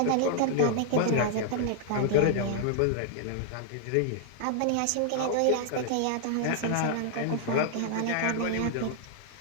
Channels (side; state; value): both; different; correlation -0.01